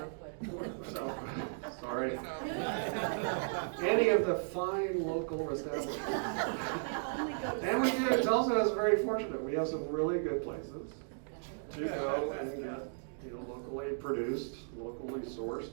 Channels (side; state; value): left; silent; digital silence